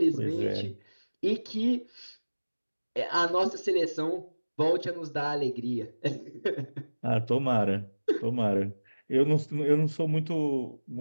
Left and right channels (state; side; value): inverted; both; correlation -1.00